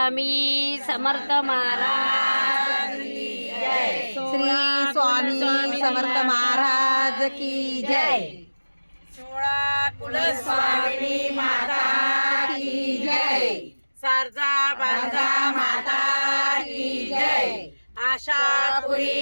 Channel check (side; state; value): both; inverted; correlation -1.00